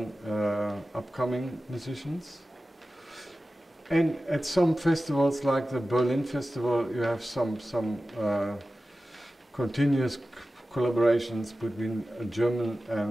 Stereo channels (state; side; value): normal; both; correlation 0.95